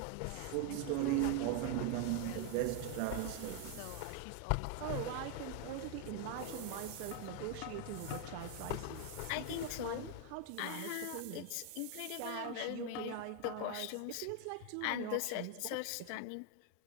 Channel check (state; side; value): different; both; correlation 0.01